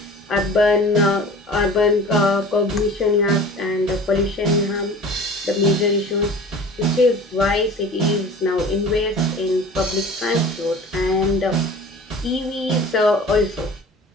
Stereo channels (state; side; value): normal; both; correlation 0.41